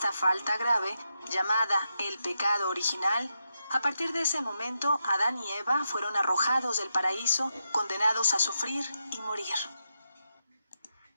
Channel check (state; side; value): inverted; both; correlation -0.86